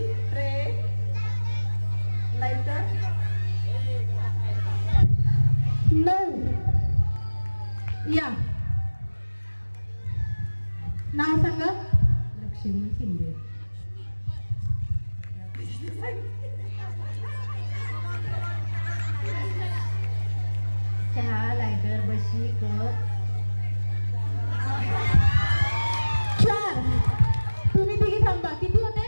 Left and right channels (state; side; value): inverted; both; correlation -1.00